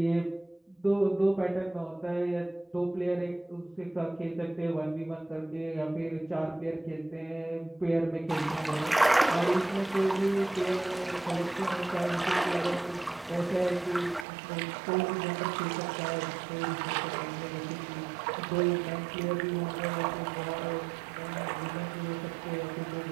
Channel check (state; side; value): drops out; left; at 14.2 s